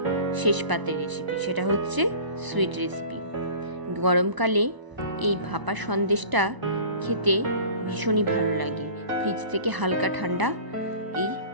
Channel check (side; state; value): left; late; 1.0 ms